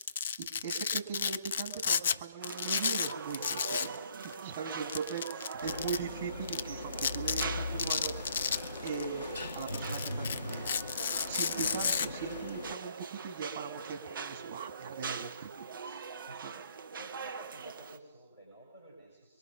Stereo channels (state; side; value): inverted; both; correlation -0.64